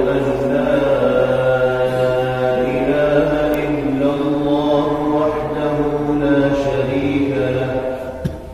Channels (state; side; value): identical; both; correlation 1.00